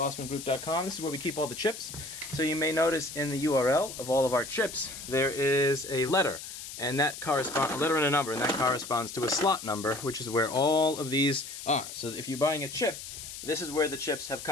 This is where we keep all the chips. So you may notice in the URL of all of our chips, there is a letter, and that corresponds, a letter and a number, and that corresponds to a slot number, which is where all of these are. So if you're buying a chip, this is where the chips have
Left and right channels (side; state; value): left; noise; hiss, 10 dB below the sound